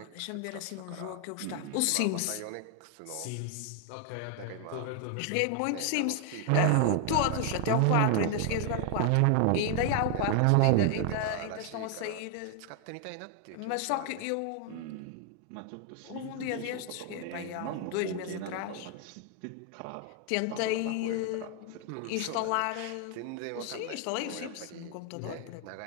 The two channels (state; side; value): different; both; correlation 0.00